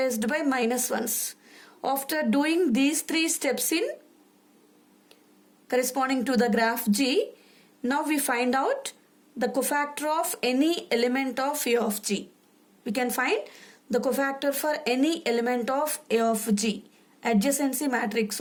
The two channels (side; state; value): both; identical; correlation 1.00